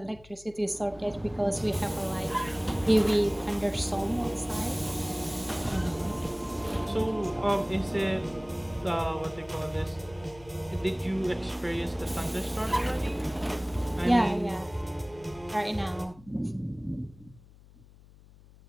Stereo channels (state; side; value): noise; left; hum, 23 dB below the sound